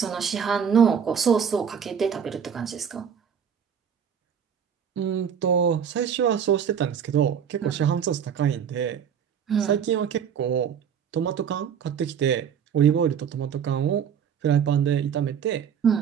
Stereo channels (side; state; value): left; quieter; 7.8 dB